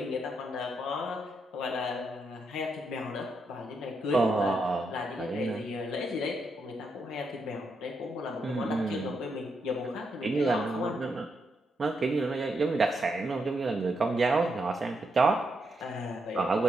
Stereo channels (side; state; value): both; normal; correlation 0.81